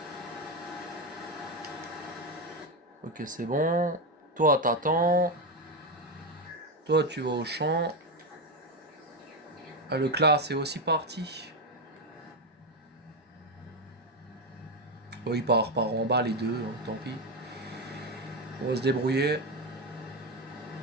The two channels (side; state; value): both; normal; correlation 0.10